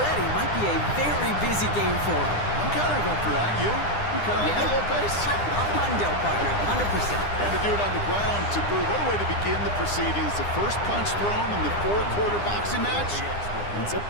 Might be a very busy game for them. I'm kind of up for that. You kind of like that little pace? A hundo, partner, 100%. And to do it on the ground, to boot. What a way to begin the proceedings. The first punch thrown in the 4-quarter boxing match ends up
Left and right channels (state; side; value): late; right; 9.9 ms